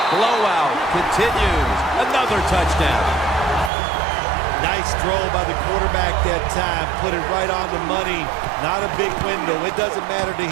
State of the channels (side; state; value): left; drops out; at 3.7 s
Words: blowout continues. Another touchdown. Nice throw by the quarterback that time. Put it right on the money. Not a big window. It doesn't matter to